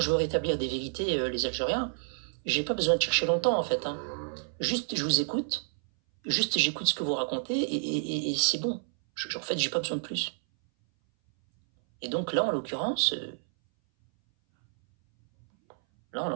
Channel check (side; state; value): left; silent; 58 dB below the other